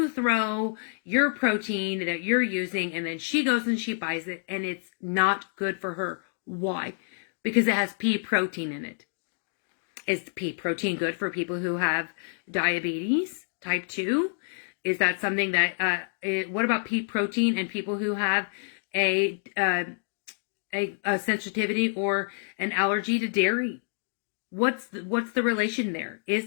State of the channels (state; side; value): silent; right; digital silence